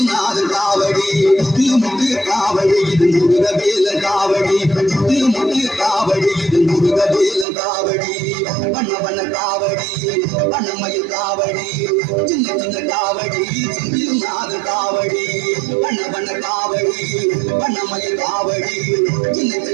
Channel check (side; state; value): left; drops out; at 7.5 s